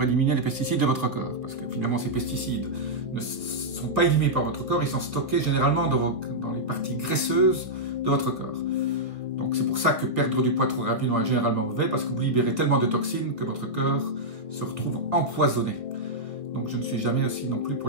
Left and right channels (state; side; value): late; left; 1.8 ms